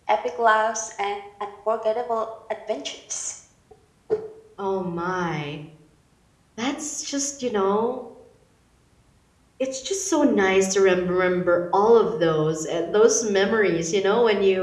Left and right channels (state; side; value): identical; both; correlation 1.00